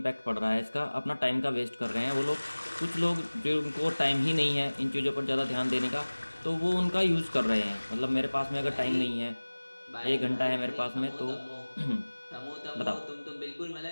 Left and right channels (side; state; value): both; inverted; correlation -1.00